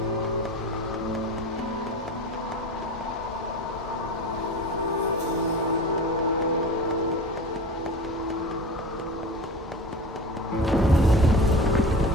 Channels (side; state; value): both; normal; correlation 0.33